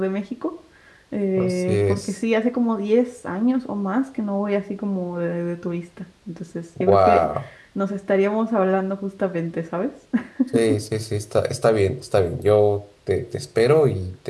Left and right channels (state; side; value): identical; both; correlation 1.00